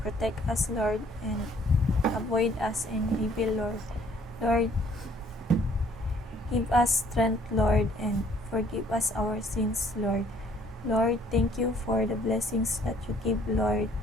us, Lord. And avoid us in evil, Lord. Lord, give us strength, Lord. And forgive us our sins, Lord. Lord, thank you for the blessings that you give, Lord.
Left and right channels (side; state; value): both; normal; correlation 0.60